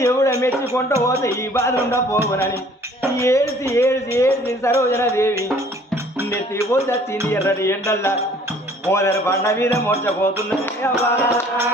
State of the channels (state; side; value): normal; both; correlation 0.55